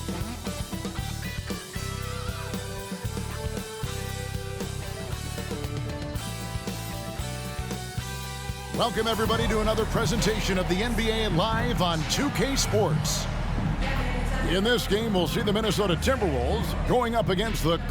Welcome, everybody, to another presentation of the NBA Live on 2K Sports. In this game, we'll see the Minnesota Timberwolves going up against the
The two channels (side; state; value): both; identical; correlation 1.00